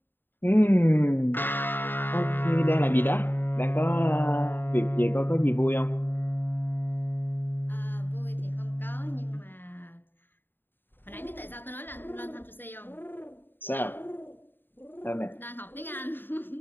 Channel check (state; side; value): late; right; 0.095 ms